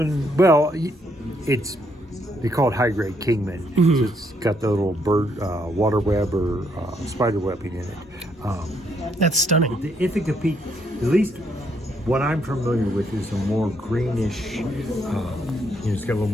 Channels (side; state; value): both; normal; correlation 0.73